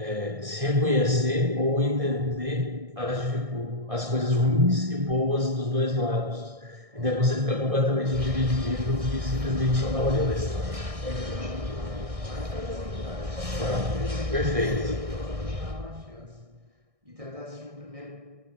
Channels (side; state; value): left; late; 1.6 ms